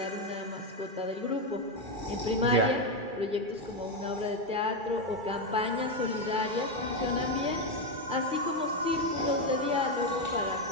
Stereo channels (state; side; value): late; left; 2.3 ms